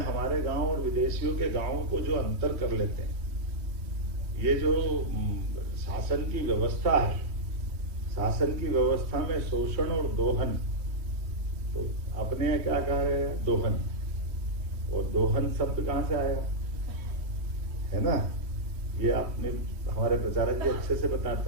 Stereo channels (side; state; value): left; late; 3.1 ms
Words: गांव और विदेशियों के गांवों को जो अंतर कर लेते हैं, ये जो शासन की व्यवस्था है, शासन की व्यवस्था में शोषण और दोहन, तो अपने क्या कह रहे हैं दोहन, और दोहन शब्द कहां से आया है ना, ये आपने हमारे प्रचारक जी अच्छे से